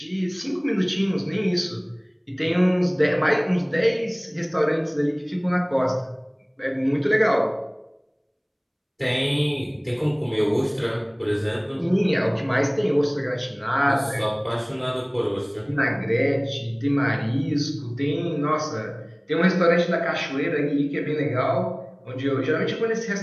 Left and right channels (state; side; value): identical; both; correlation 1.00